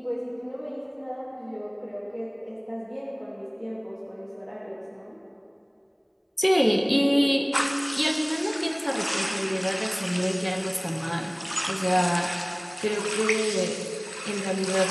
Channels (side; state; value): both; identical; correlation 1.00